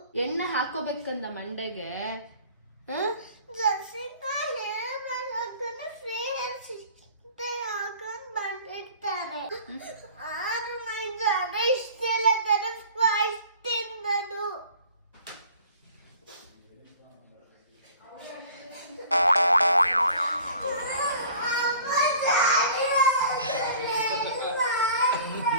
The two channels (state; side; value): inverted; both; correlation -0.49